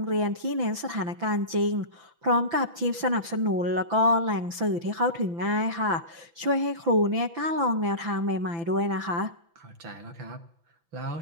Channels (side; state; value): left; late; 5.9 ms